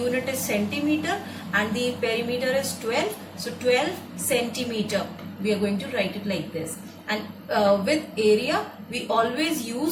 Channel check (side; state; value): both; identical; correlation 1.00